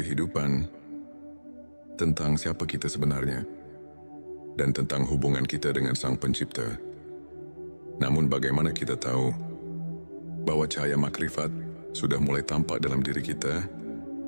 tentang siapa kita sebenarnya, dan tentang hubungan kita dengan Sang Pencipta. Namun bagaimana kita tahu bahwa cahaya makrifat sudah mulai tampak dalam diri kita?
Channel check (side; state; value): both; inverted; correlation -1.00